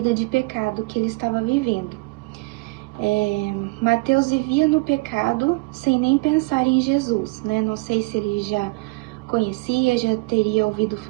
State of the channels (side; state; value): left; quieter; 26.7 dB